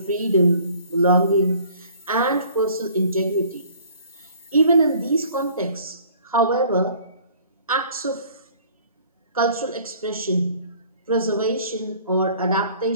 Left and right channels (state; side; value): inverted; both; correlation -0.53